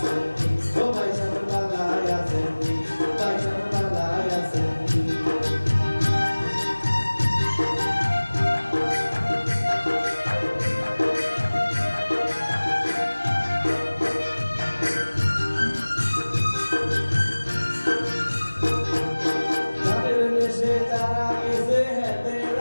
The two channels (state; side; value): inverted; both; correlation -1.00